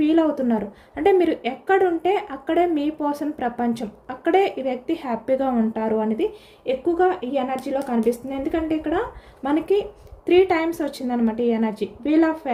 అవుతున్నారు. అంటే మీరు ఎక్కడుంటే అక్కడే మీ పర్సన్ ప్రపంచం, అక్కడే ఈ వ్యక్తి హ్యాపీగా ఉంటారు అనేది ఎక్కువగా ఈ ఎనర్జీలో కనిపిస్తుంది. ఎందుకంటే ఇక్కడ మనకి 3 times వచ్చిందనమాట ఈ ఎనర్జీ. వీల్ ఆఫ్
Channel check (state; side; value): identical; both; correlation 1.00